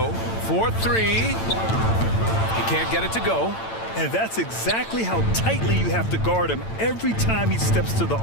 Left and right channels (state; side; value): late; right; 8.9 ms